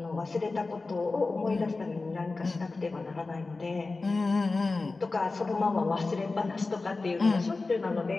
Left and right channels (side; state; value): right; quieter; 3.6 dB